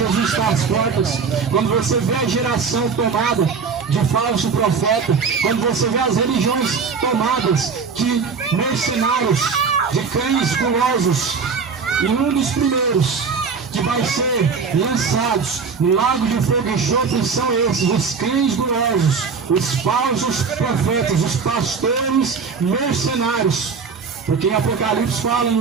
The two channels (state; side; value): quieter; left; 5.4 dB